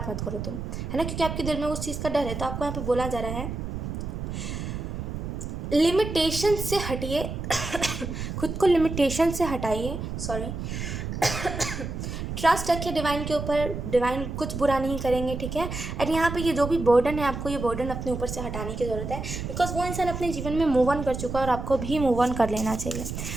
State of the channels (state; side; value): noise; right; rumble, 5 dB below the sound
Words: मत करो तुम, है ना, क्योंकि आपके दिल में उस चीज़ का डर है। तो आपको यहाँ पे बोला जा रहा है लिमिटेशन से हटिए खुद को लिमिटेशन से हटाइए, सॉरी ट्रस्ट रखिए डिवाइन के ऊपर, डिवाइन कुछ बुरा नहीं करेंगे, ठीक है। एंड यहाँ पे ये जो भी बर्डन है, आपको ये बर्डन अपने ऊपर से हटाने की ज़रूरत है, बिकॉज वो इंसान अपने जीवन में मूव ऑन कर चुका है और आपको भी मूव ऑन कर लेना चाहिए।